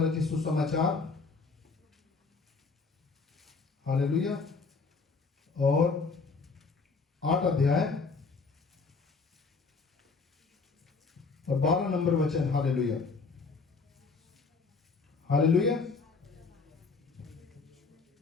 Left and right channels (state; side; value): quieter; right; 4.4 dB